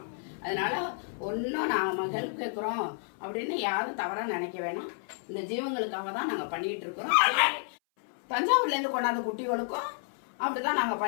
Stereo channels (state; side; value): silent; right; 57 dB below the other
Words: அதனால ஒன்னும் நாம ஹெல்ப் கேட்கிறோம் அப்படின்னு யாரும் தவறா நினைக்க வேணாம். இந்த ஜீவங்களுக்காக தான் நாங்க பண்ணிட்டு இருக்கிறோம். தஞ்சாவூர்ல இருந்து கொண்டாந்த குட்டிகளுக்கும் அப்படிதான் நாங்க